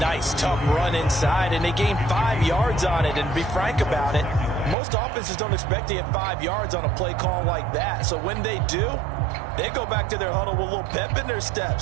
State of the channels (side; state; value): left; drops out; at 4.8 s